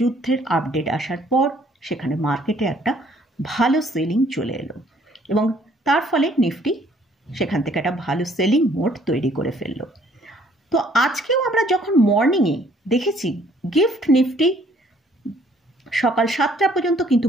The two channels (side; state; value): both; normal; correlation 0.62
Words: আপডেট আসার পর সেখানে মার্কেটে একটা ভালো সেলিং চলে এলো এবং তার ফলে নিফটি সেখান থেকে একটা ভালো সেলিং মোড তৈরি করে ফেললো। তো আজকেও আমরা যখন মর্নিংয়ে দেখেছি গিফট নিফটি সকাল 7টা পর্যন্ত কিন্তু